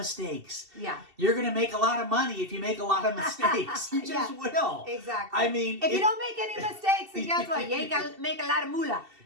Yeah. You're going to make a lot of money if you make a lot of mistakes. You just will. Exactly. I mean, if you don't make any mistakes, then guess what? You ain't got to make a lot of moolah.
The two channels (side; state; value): left; late; 2.7 ms